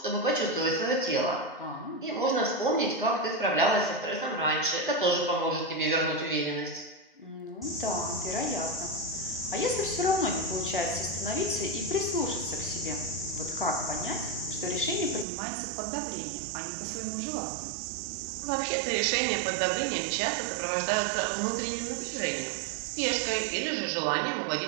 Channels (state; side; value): drops out; left; at 15.2 s